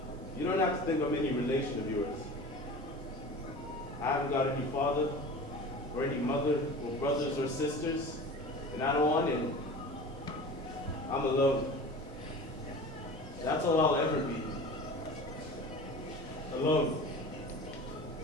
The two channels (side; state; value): both; normal; correlation 0.36